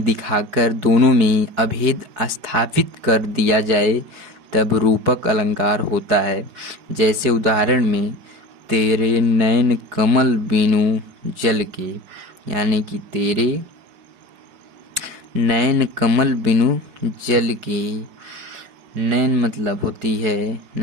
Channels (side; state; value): left; late; 4.7 ms